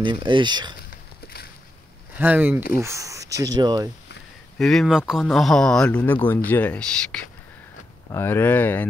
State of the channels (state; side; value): normal; both; correlation 0.86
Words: عشق. همین. اوف چه جای. ببین مکان. آها لونه گنجشک. آره